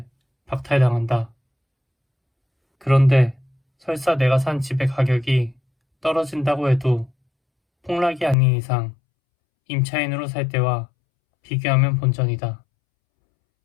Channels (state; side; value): drops out; right; at 8.3 s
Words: 박탈당한다. 그런데 설사 내가 산 집의 가격이 떨어진다고 해도 폭락이 아닌 이상 임차인으로 살 때와 비교하면 본전이다.